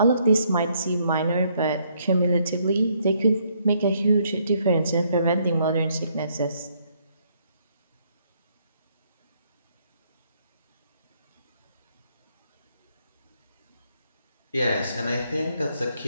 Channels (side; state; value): both; inverted; correlation -0.71